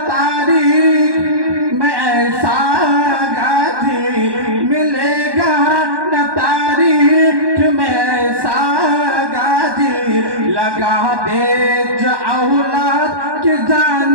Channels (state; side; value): late; left; 1.1 ms